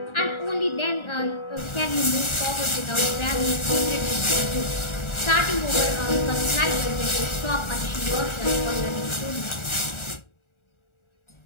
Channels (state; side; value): late; right; 1.4 ms